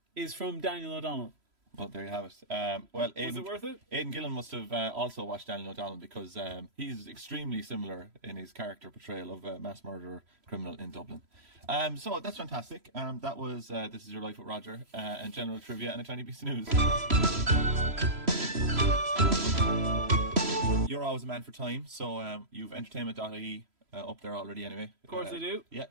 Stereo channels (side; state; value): left; late; 3.0 ms